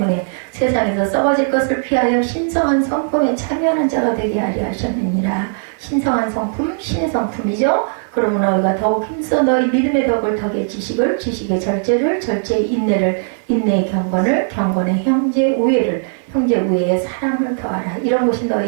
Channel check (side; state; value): left; silent; 56 dB below the other